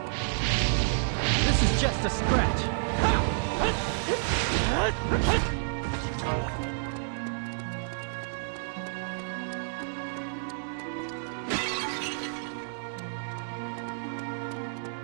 This is just a scratch.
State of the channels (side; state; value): left; silent; digital silence